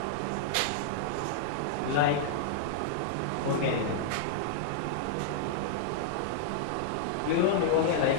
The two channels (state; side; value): different; both; correlation -0.01